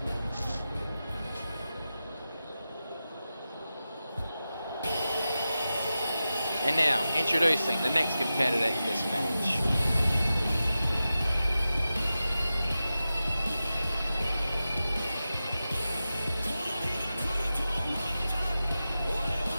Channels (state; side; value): inverted; both; correlation -0.93